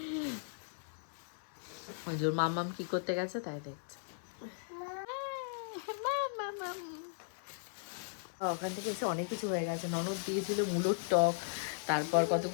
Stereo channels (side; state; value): right; silent; 53 dB below the other